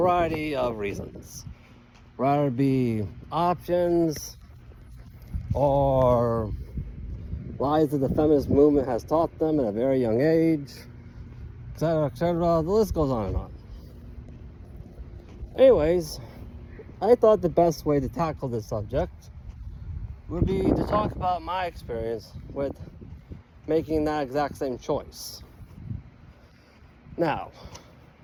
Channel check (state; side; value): identical; both; correlation 1.00